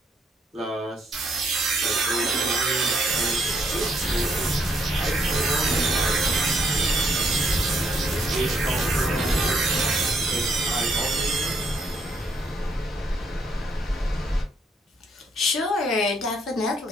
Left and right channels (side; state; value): both; normal; correlation 0.72